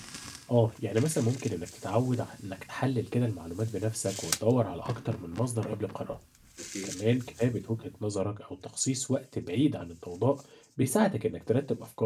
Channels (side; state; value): both; identical; correlation 1.00